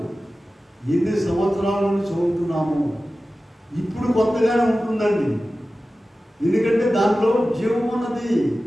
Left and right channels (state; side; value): normal; both; correlation 0.95